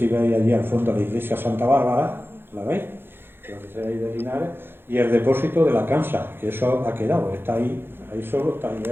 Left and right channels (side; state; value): left; late; 0.10 ms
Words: veis allí al fondo la iglesia Santa Bárbara, ¿la veis? Donde se veis de Linares, y el depósito de la Cansa, que eso ha quedado, está ahí solo, está ahí